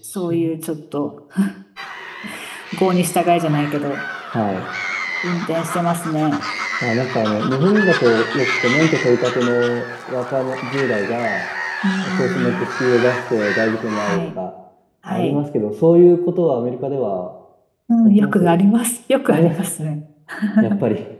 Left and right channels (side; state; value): both; identical; correlation 1.00